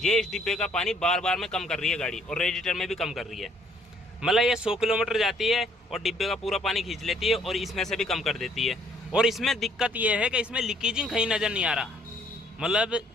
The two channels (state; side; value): normal; both; correlation 0.64